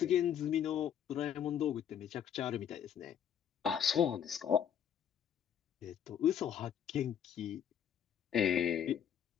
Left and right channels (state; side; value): quieter; right; 9.0 dB